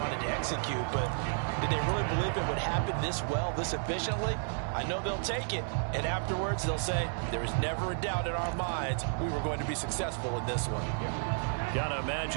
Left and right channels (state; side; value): silent; left; 56 dB below the other